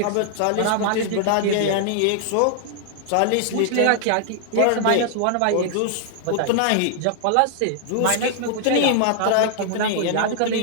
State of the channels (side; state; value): both; different; correlation -0.01